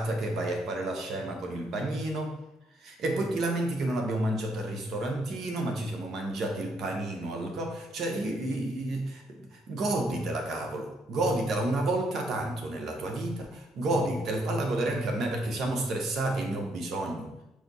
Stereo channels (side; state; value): both; normal; correlation 0.73